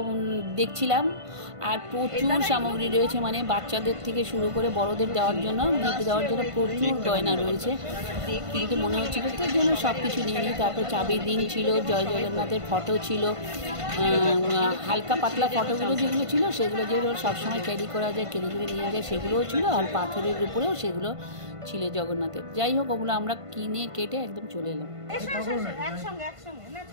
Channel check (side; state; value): left; late; 1.5 ms